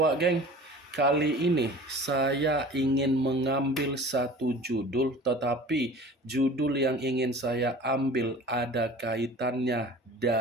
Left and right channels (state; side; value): normal; both; correlation 0.42